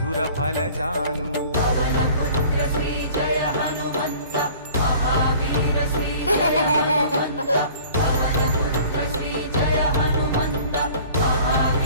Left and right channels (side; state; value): both; inverted; correlation -0.47